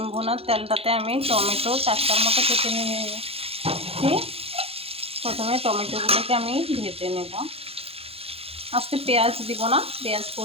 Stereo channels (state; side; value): late; left; 0.28 ms